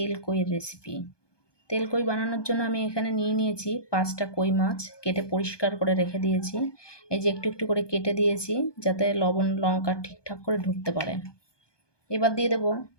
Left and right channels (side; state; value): right; late; 1.2 ms